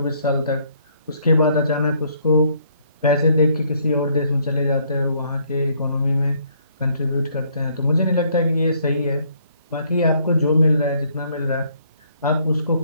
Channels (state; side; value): inverted; both; correlation -0.66